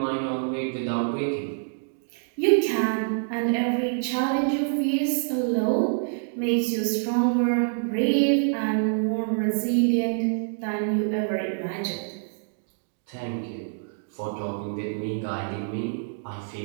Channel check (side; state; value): left; silent; digital silence